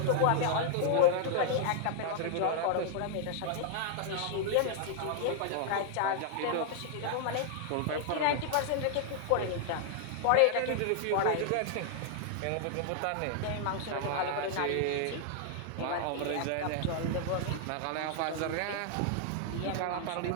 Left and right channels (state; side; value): different; both; correlation -0.01